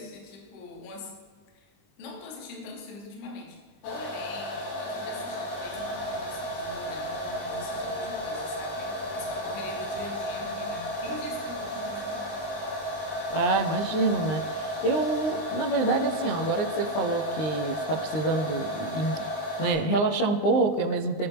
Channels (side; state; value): right; late; 19 ms